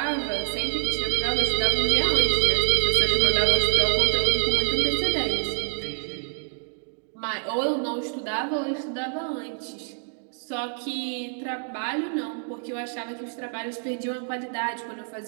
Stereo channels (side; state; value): left; silent; 61 dB below the other